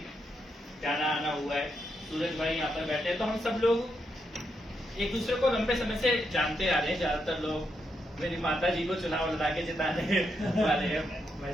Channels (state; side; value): normal; both; correlation 0.81